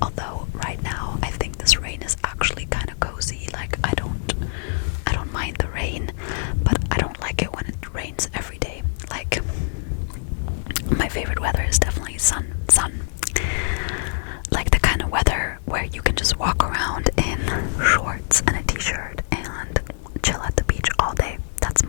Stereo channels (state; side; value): silent; right; digital silence